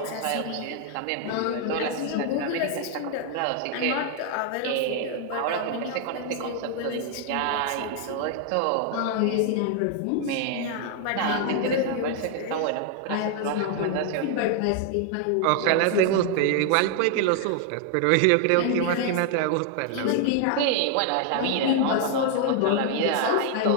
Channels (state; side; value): different; both; correlation 0.00